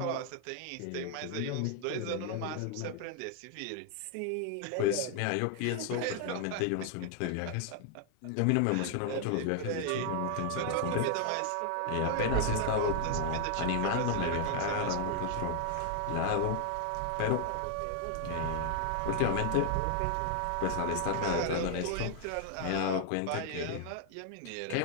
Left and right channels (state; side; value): different; both; correlation 0.00